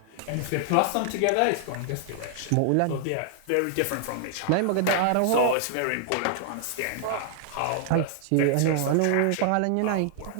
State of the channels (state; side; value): different; both; correlation -0.01